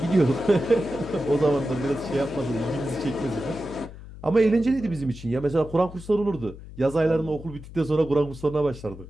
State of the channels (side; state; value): left; noise; hum, 15 dB below the sound